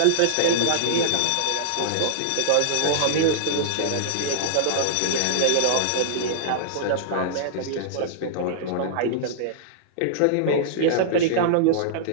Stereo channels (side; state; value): both; different; correlation -0.02